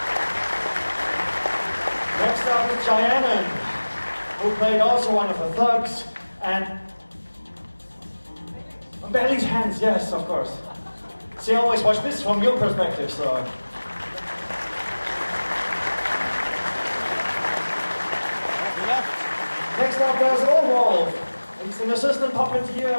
Next up is Cheyenne, who played also one of the thugs, and Bailey's hands, yes, of course. See, I always watch this from your perspective, so. Next up, there's Orwolf. He's an assistant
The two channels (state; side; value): inverted; both; correlation -1.00